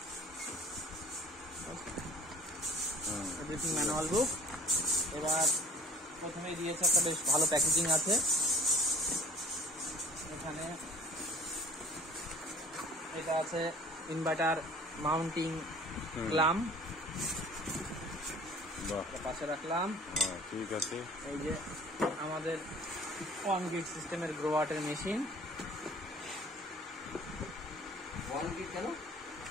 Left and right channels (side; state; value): both; normal; correlation 0.50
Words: ম্যানুয়াল বুক। এবার প্রথমেই দিয়েছে একটা বেশ ভালো প্যাকেজিং আছে। এখানে এটা আছে ইনভার্টার মাউন্টিং ক্লাম, পাশে রাখলাম। ঠিক আছে, এই যে আমাদের 1 গ্রিড সিস্টেমের গ্রোওয়াটের মেশিন। 1 গ্রিড কেন?